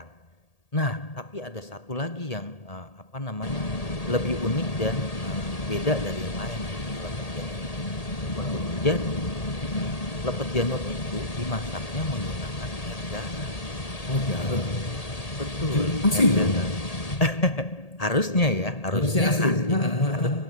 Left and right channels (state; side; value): late; right; 1.8 ms